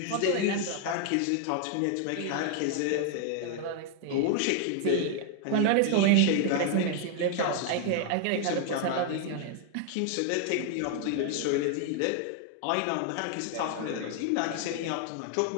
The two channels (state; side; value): different; both; correlation 0.00